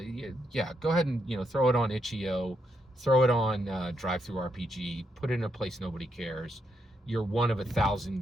go ahead and throw it on itch.io, throw it on Drive-Thru RPG, put it in a place nobody cares, you're one of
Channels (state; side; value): normal; both; correlation 0.80